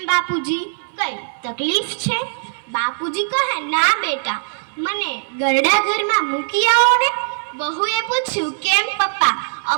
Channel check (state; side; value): silent; left; digital silence